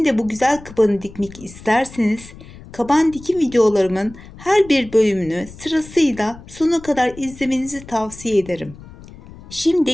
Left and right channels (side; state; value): left; noise; rumble, 18 dB below the sound